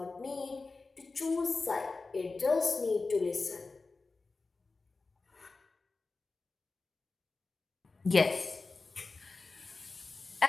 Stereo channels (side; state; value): right; quieter; 3.8 dB